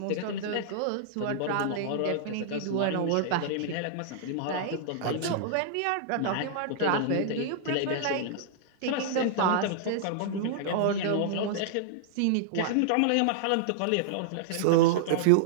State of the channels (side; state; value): both; different; correlation -0.01